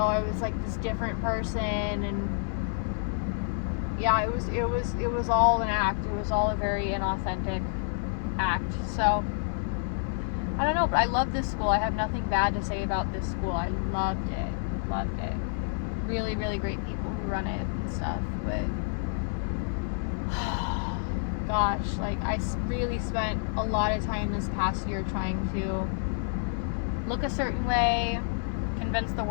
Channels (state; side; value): silent; right; 56 dB below the other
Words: I was, like, this different person, and yeah, it was all an act. It was all a very inauthentic act. So I don't know, but I love this school. I have nothing bad to say about this school. I loved it. Really, really great people who run it and stuff. But gosh, like, I really spent a lot of time this past year trying to look a certain way, convince the